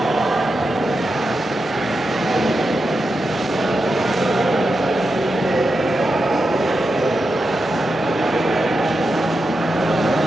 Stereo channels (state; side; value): normal; both; correlation 0.88